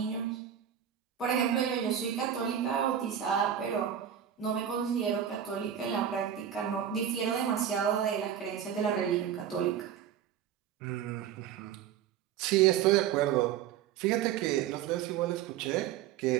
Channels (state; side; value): quieter; left; 9.4 dB